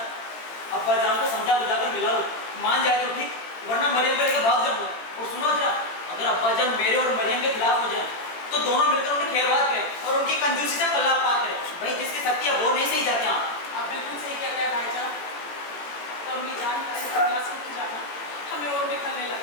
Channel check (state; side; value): late; right; 18 ms